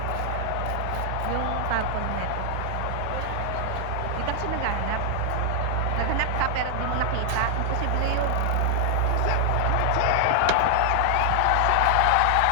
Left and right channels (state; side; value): different; both; correlation 0.00